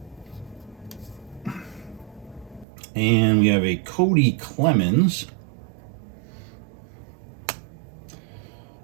And we have a Cody Clemens.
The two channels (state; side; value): drops out; left; at 2.7 s